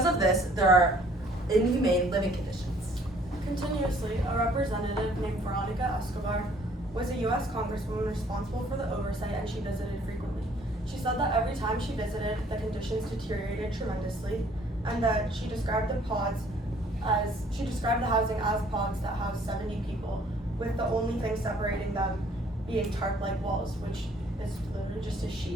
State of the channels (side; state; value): both; normal; correlation 0.59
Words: of this, there are inhumane living conditions. Continuously, a representative named Veronica Escobar was a U.S. Congresswoman responsible for the oversight, and she visited frequently. She said that every time she visited, the conditions deteriorated tremendously, and that she described the housing as pods that house 70 people, with the only thing separating them being tarp-like walls, which is literally just a